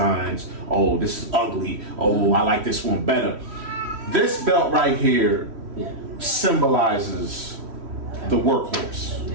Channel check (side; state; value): left; late; 3.1 ms